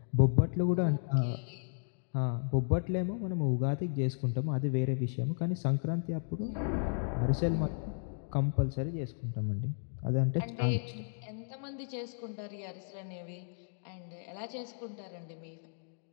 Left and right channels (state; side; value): silent; right; digital silence